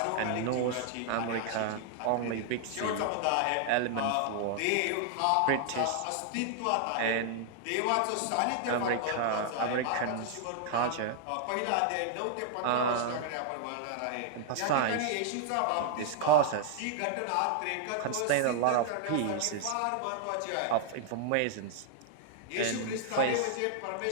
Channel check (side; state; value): both; different; correlation 0.00